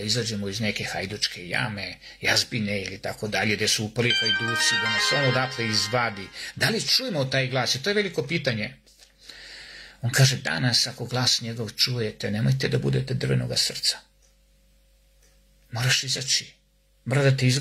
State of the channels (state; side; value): identical; both; correlation 1.00